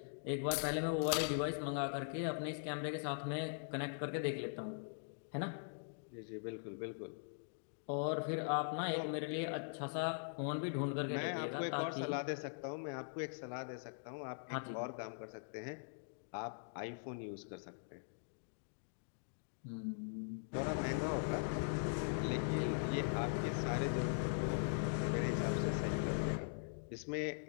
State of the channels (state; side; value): silent; right; digital silence